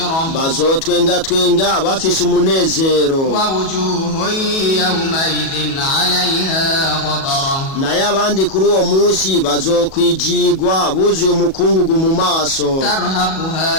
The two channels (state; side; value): late; right; 37 ms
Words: bazotwengatwenga bafise umunezero, ووجوه يومئذ عليها غبرة naye abandi kuri uwo munsi bazokwijigwa buzuye umukungugu mu maso,